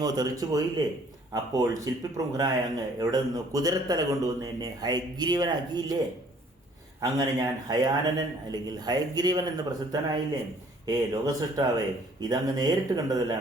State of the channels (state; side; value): normal; both; correlation 0.58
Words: തെറിച്ചു പോയില്ലേ? അപ്പോൾ ശില്പിപ്രമുഖനായ അങ്ങ് എവിടെ നിന്ന് കുതിരത്തല കൊണ്ടുവന്ന് എന്നെ ഹയഗ്രീവനാക്കിയില്ലേ? അങ്ങനെ ഞാൻ ഹയാനനൻ അല്ലെങ്കിൽ ഹയഗ്രീവൻ എന്ന് പ്രസിദ്ധനായില്ലേ? ലോകസൃഷ്ടാവേ, ഇതങ്ങ് നേരിട്ട്